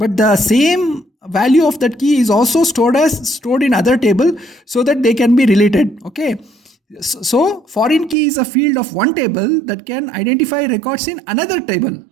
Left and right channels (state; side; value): drops out; left; at 8.2 s